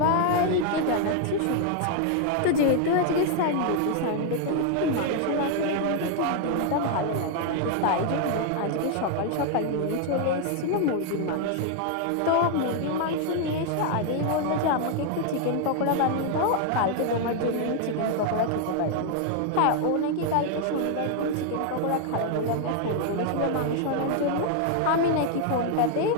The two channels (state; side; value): different; both; correlation 0.00